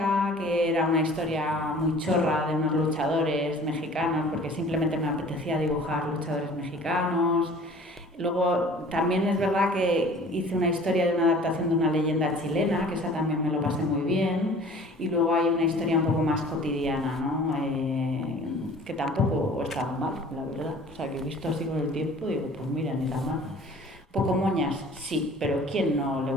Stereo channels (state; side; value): normal; both; correlation 0.47